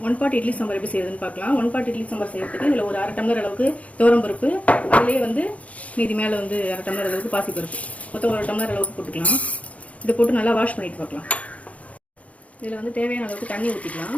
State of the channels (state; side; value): late; right; 0.066 ms